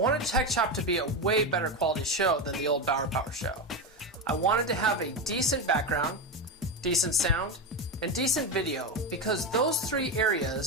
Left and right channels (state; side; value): normal; both; correlation 0.14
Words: Tech Shop to be a way better quality show than the old Bauer Power show. I wanted to have a decent background, decent sound, and decent video because those three